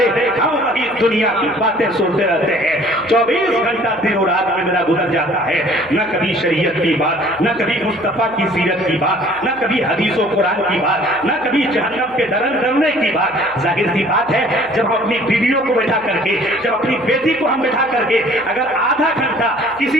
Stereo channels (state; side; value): noise; right; hum, 23 dB below the sound